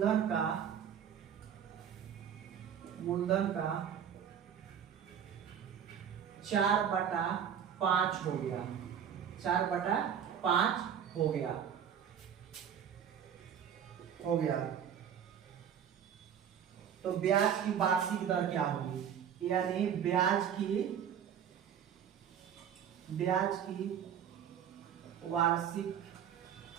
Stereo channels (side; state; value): left; quieter; 8.6 dB